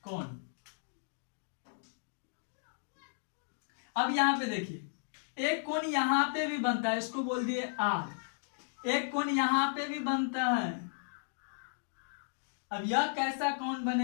कोण। अब यहाँ पे देखिए एक कोण यहाँ पे भी बनता है, इसको बोल दिए आर। एक कोण यहाँ पे भी बनता है। अब यह कैसा कोण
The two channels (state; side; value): silent; right; digital silence